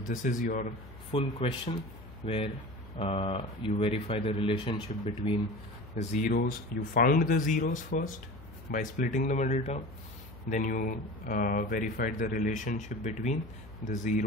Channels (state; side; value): noise; left; hum, 17 dB below the sound